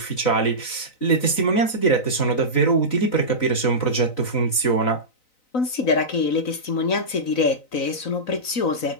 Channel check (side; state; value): right; late; 3.9 ms